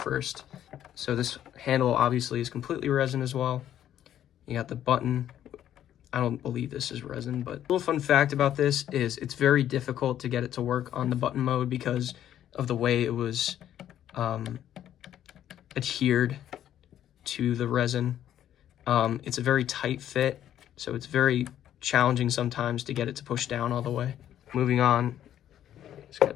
So this handle obviously is completely resin as well. You got the button. I don't believe this is resin, but a little fun fact about this is it's very difficult to get it to work on the button mode because of the way it was adhered to the resin. It's a very tight fit, so it's very challenging sometimes to get it to push down all the way. Moving on, just gotta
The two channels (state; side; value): quieter; right; 11.1 dB